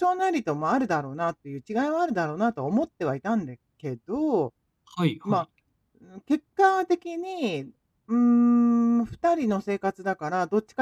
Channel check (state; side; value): identical; both; correlation 1.00